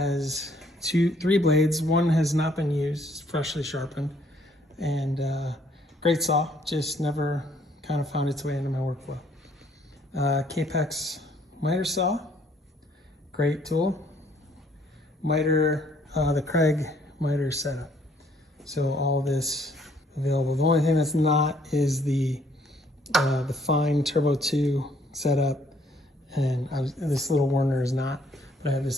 three blades. One has not been used, freshly sharpened, and great saw, just never kind of found its way into my workflow. Kapex miter saw, great tool. Miter, the Craig miter setup. So all this available. The only thing that's not is the fine Turbo 2 setup, and this little Werner is not, but I have this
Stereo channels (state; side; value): normal; both; correlation 0.65